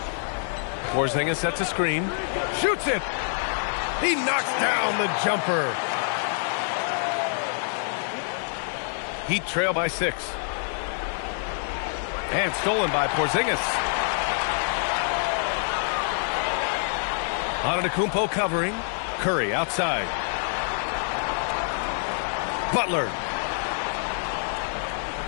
Porzingis sets a screen. Shoots it. He knocks down the jumper. Heat trail by 6. And stolen by Porzingis. Antetokounmpo covering. Curry outside. Butler.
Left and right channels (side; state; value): right; silent; 61 dB below the other